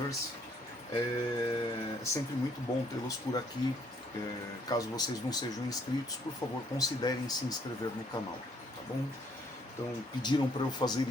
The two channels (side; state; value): both; normal; correlation 0.66